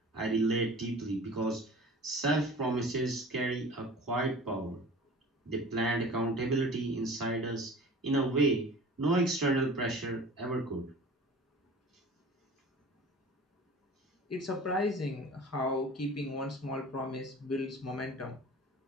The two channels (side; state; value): both; normal; correlation 0.41